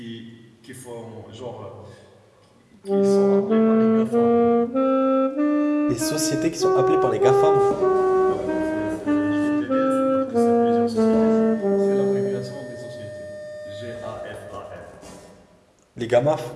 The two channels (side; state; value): both; identical; correlation 1.00